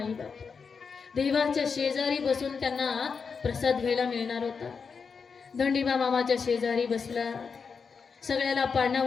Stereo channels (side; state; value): right; quieter; 5.6 dB